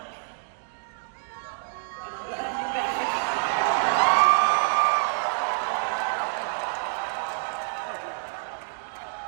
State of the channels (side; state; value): left; silent; digital silence